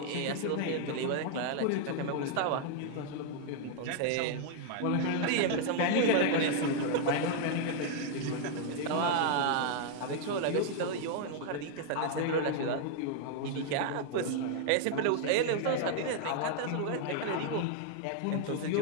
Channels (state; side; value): different; both; correlation 0.00